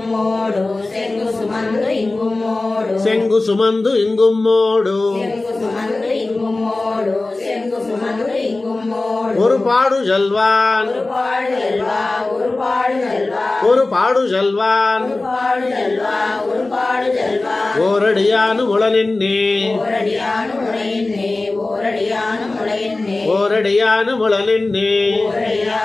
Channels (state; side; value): quieter; right; 3.1 dB